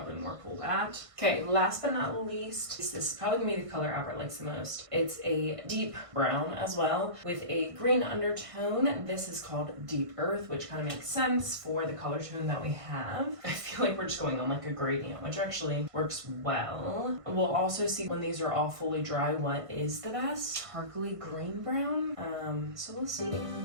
more pull that. Okay, last but not least, this is probably gonna be the color Albert likes the most. It's a deep brown as well with a green undertone. This is called Deep Earth, which kind of makes sense for the color tone that we have. I feel like we're just going on like a gradient, which actually works well. We'll also see when these are all fully dry what is the best. Sparkly green brown. So we'll see.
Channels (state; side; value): late; left; 1.5 ms